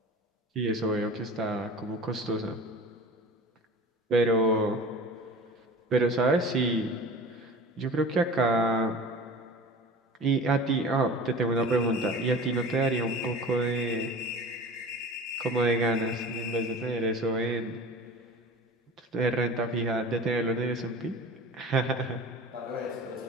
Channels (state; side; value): normal; both; correlation 0.38